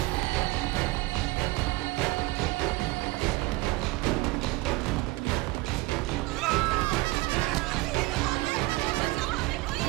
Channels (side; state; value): left; quieter; 22.1 dB